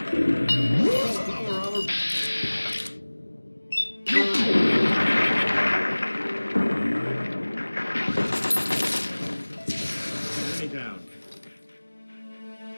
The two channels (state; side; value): inverted; both; correlation -1.00